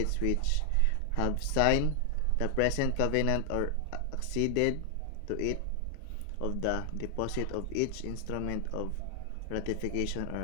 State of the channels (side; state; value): both; different; correlation 0.00